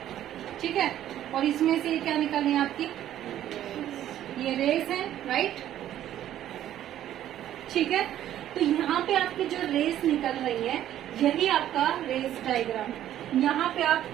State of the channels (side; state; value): left; quieter; 11.9 dB